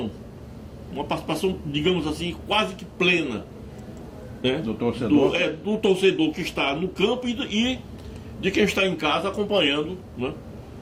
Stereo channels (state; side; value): identical; both; correlation 1.00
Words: digamos assim, quase que plena, né? Do torcedor. Do torcedor que está no campo e de quem está em casa acompanhando, né?